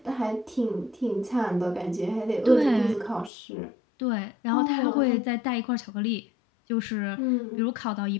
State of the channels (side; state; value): right; drops out; at 3.3 s